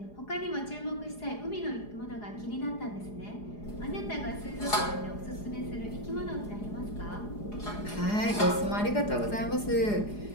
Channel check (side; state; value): right; late; 4.8 ms